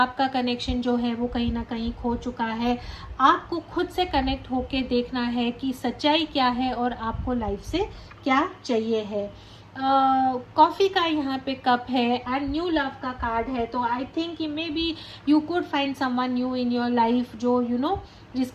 कनेक्शन जो है वो कहीं ना कहीं खो चुका है। आपको खुद से कनेक्ट होके देखना है कि सच्चाई क्या है और आपको लाइफ से क्या चाहिए है। कॉफ़ी का यहाँ पे कप है एंड न्यू लव का कार्ड है। तो I think may be you could find someone new in your life, जो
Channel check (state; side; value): identical; both; correlation 1.00